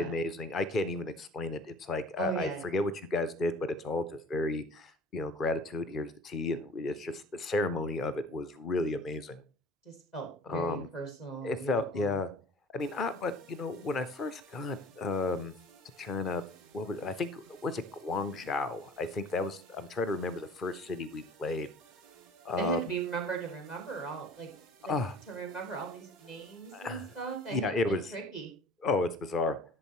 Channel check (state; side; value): normal; both; correlation 0.46